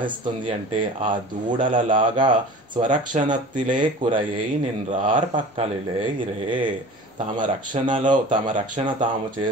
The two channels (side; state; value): both; normal; correlation 0.39